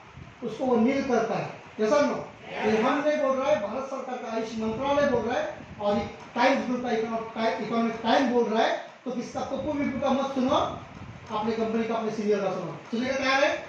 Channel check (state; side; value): identical; both; correlation 1.00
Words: उसको वो नील करता है। जैसा नो ये हम नहीं बोल रहा है, भारत सरकार का आयुष मंत्रालय बोल रहा है, और टाइम्स ग्रुप का इकोनॉमिक टाइम बोल रहा है। तो किसका पप्पू बिप्पू का मत सुनो, अपने कंपनी का, अपने सीनियर का सुनो। सुनने का तैयार है?